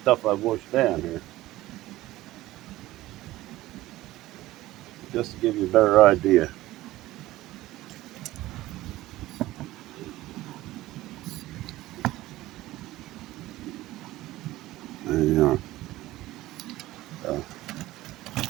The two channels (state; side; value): quieter; left; 16.7 dB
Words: I've washed down here, just to give you a better idea. And, uh,